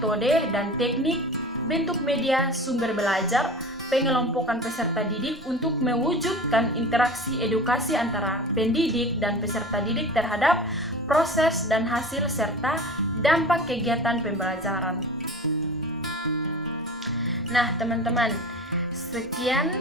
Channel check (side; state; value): both; normal; correlation 0.36